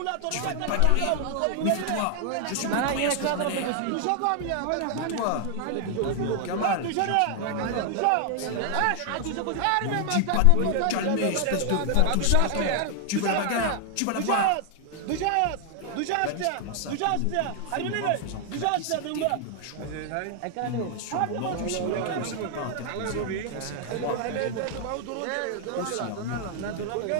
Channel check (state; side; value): different; both; correlation 0.00